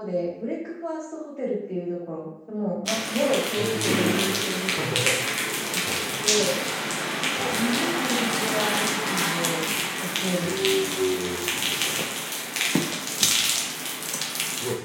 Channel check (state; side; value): identical; both; correlation 1.00